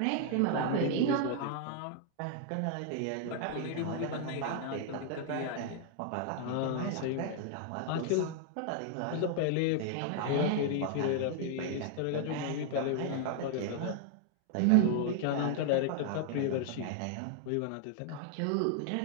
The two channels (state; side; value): different; both; correlation 0.00